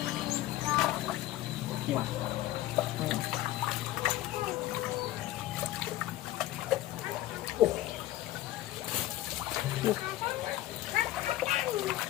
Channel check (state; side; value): quieter; right; 15.0 dB